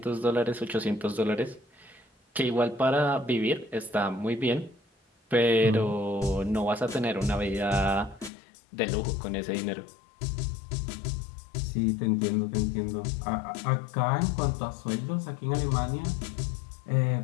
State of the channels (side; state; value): right; drops out; at 8.3 s